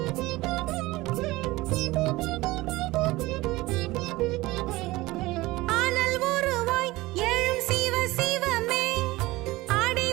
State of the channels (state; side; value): quieter; left; 19.7 dB